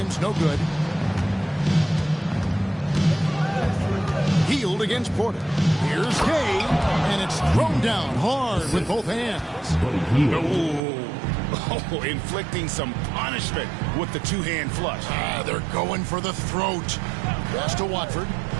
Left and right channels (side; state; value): left; drops out; at 10.8 s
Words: no good. Hield against Porter. Here's Gay, and it's thrown down hard with both hands. Oh, inflicting some punishment with the two-hand flush. They're going for the throat. Pass to Watford.